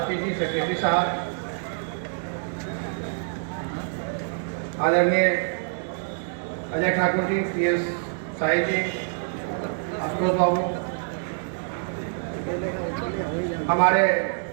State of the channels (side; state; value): left; silent; digital silence